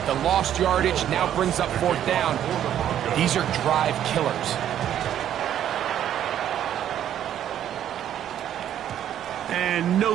the lost yardage now brings up 4th down. These are drive killers. And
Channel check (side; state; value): left; quieter; 10.6 dB